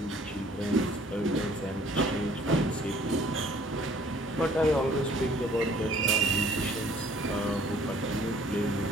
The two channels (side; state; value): both; normal; correlation 0.56